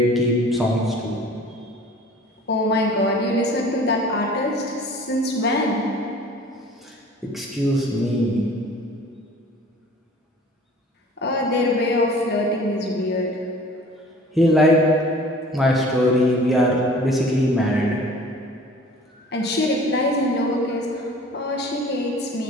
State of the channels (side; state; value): both; normal; correlation 0.47